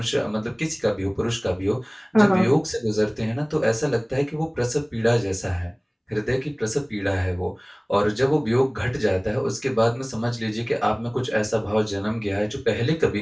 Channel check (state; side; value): identical; both; correlation 1.00